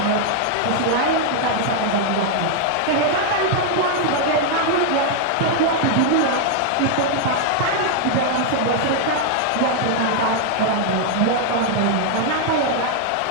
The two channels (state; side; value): different; both; correlation 0.00